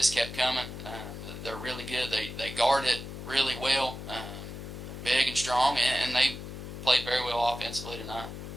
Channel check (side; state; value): left; noise; hum, 9 dB below the sound